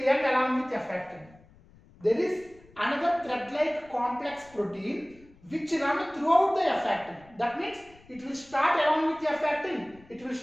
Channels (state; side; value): noise; left; rumble, 26 dB below the sound